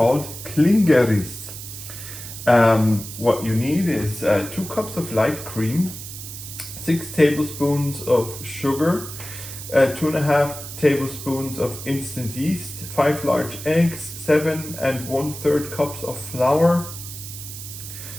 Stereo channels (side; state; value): right; noise; hiss, 11 dB below the sound